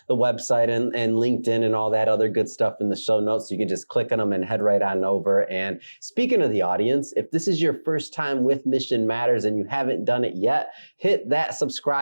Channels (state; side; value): inverted; both; correlation -1.00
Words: the website and LinkedIn and all that other good stuff in the show notes. So you can just click on them and head right on over. And speaking of the audience, if this is your first time with Mission Matters and you haven't done it yet, hit that